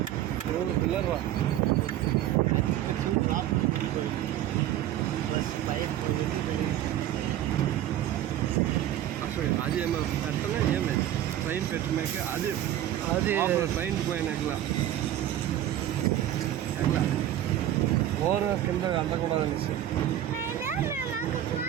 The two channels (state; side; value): quieter; left; 12.1 dB